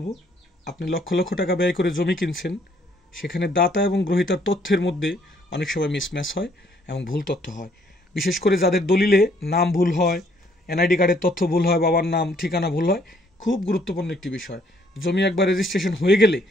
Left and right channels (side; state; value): both; normal; correlation 0.66